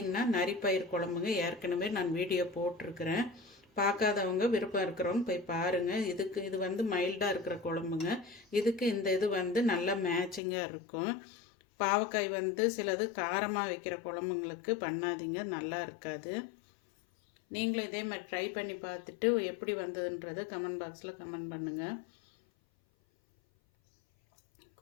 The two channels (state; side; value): drops out; right; at 10.4 s